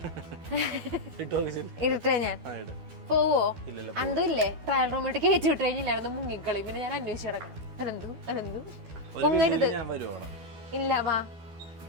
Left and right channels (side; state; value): left; late; 12 ms